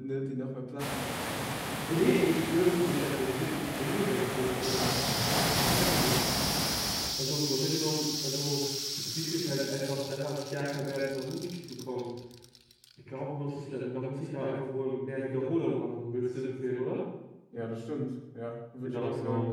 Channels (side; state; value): both; identical; correlation 1.00